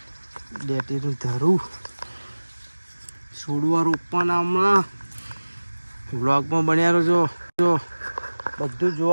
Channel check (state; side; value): inverted; both; correlation -1.00